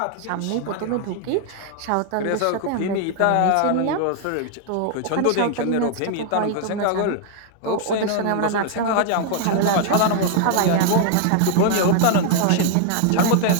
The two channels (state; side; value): different; both; correlation 0.00